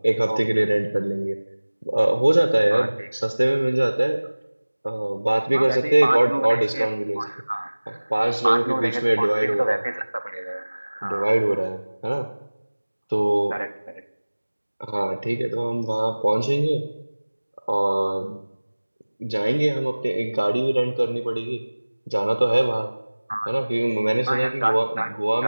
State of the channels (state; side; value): inverted; both; correlation -1.00